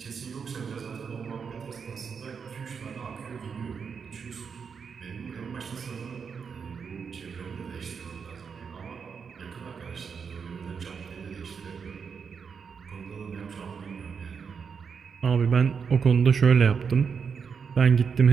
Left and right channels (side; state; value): left; quieter; 6.2 dB